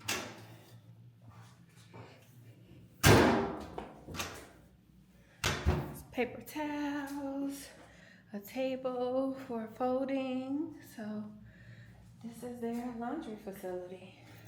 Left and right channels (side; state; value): both; identical; correlation 1.00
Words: Paper towels, a table for folding. So this is their laundry facility.